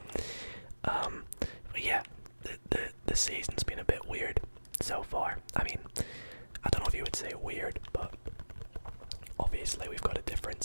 But yeah, the season's been a bit weird so far. I mean, I don't know if you would say weird, but obviously we've got a different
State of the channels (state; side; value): inverted; both; correlation -1.00